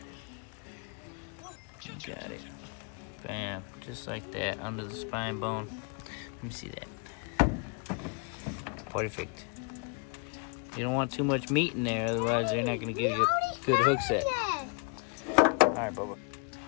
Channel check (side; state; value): right; quieter; 36.0 dB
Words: You got it. Bam, just like that, under the spine bone. Let me see that. Perfect. You don't want too much meat in there, otherwise they're not gonna give you a good hook set. Alright, Bubba.